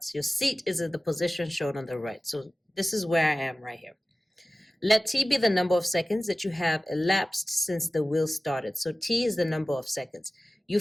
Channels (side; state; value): both; normal; correlation 0.96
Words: Your seat is at the position shown on the right. So this is where I am right here. Let t be the number of seconds that you have elapsed since the wheel started. So t is the number of seconds. You